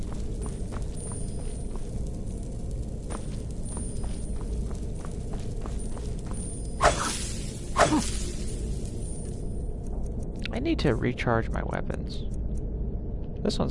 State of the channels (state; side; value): identical; both; correlation 1.00